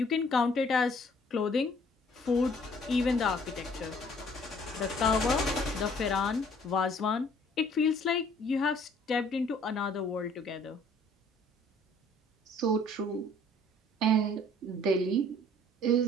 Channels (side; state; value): both; normal; correlation 0.58